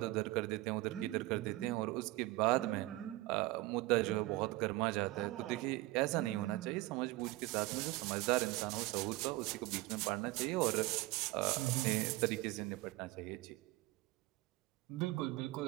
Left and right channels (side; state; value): left; quieter; 19.5 dB